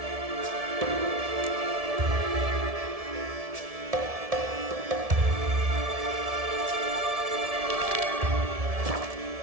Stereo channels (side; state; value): left; late; 1.7 ms